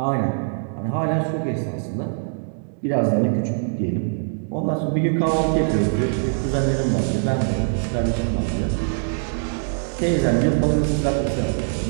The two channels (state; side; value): silent; left; 64 dB below the other